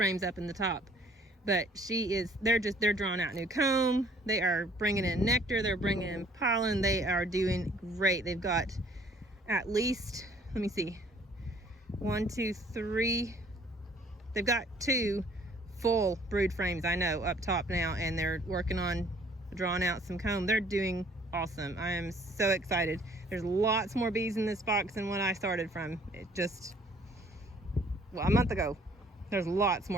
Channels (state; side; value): normal; both; correlation 0.58